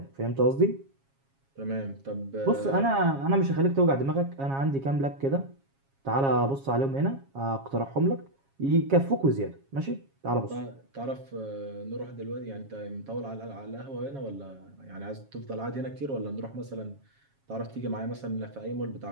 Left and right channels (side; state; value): left; late; 7.3 ms